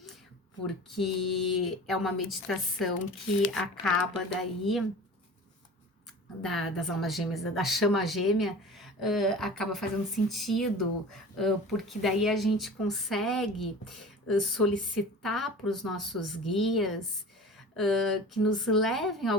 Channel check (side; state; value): both; normal; correlation 0.38